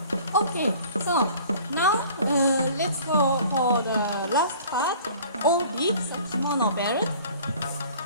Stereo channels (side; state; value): both; inverted; correlation -0.48